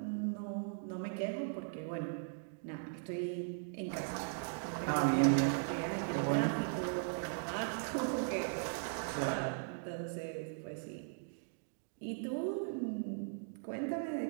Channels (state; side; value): silent; left; digital silence